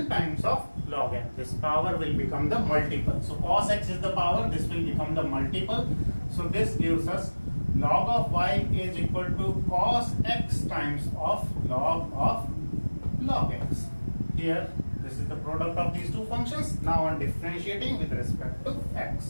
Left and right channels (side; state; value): both; inverted; correlation -1.00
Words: times of log n. This power will become the multiple. So cos x is the power, this will become the multiple. So this gives us log of y is equal to cos x times of log x. here this is the product of these two functions. Now on differentiating with respect to